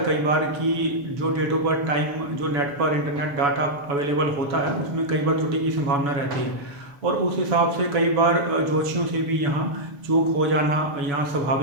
कई बार कि जो डेट ऑफ बर्थ टाइम जो नेट पर इंटरनेट डाटा अवेलेबल होता है उसमें कई बार त्रुटि की संभावना रहती है। और उस हिसाब से कई बार ज्योतिषियों से भी यहाँ चूक हो जाना यहाँ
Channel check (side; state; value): left; late; 7.0 ms